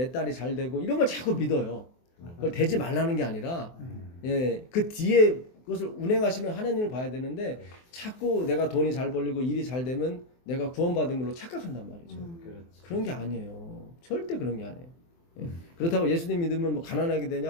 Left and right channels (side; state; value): right; late; 23 ms